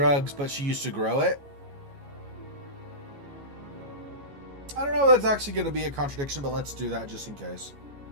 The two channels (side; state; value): left; late; 14 ms